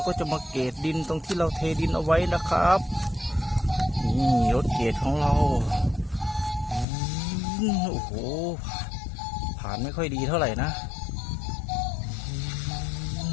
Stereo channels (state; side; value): drops out; right; at 6.9 s